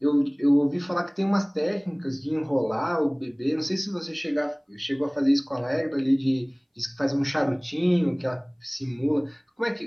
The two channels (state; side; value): identical; both; correlation 1.00